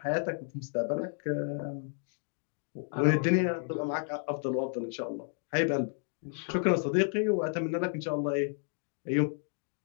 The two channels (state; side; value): silent; right; 56 dB below the other